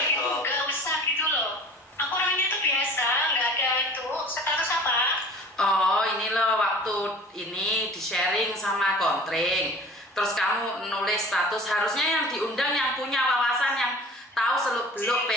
nggak usah gitu loh. Aku orangnya tuh biasa, nggak ada itu. Status apa? Oh ini loh waktu ini di sharing sama Kontring. Terus kamu nulis status, harusnya yang diundang yang punya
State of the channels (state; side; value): normal; both; correlation 0.44